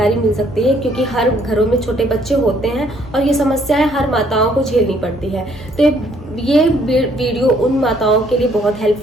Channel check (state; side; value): normal; both; correlation 0.65